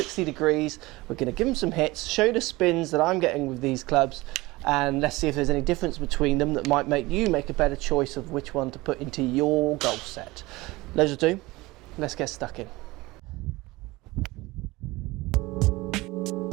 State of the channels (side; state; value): left; quieter; 20.9 dB